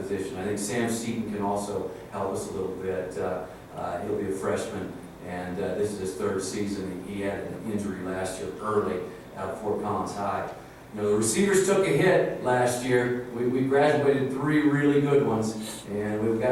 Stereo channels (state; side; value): identical; both; correlation 1.00